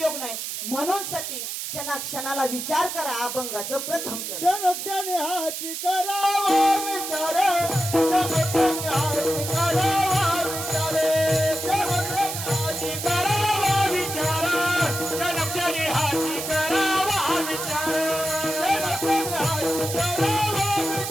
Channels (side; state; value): right; noise; hiss, 5 dB below the sound